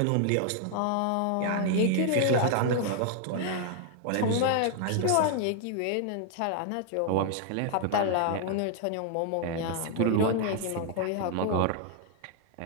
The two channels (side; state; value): both; different; correlation 0.00